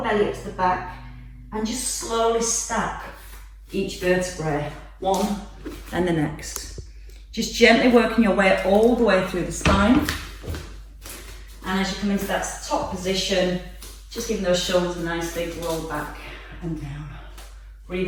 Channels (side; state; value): both; identical; correlation 1.00